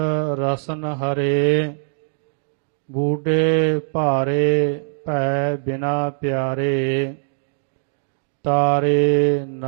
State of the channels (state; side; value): silent; left; digital silence